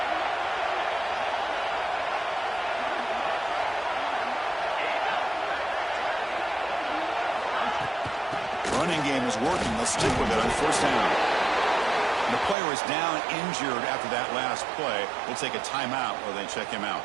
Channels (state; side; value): drops out; left; at 12.6 s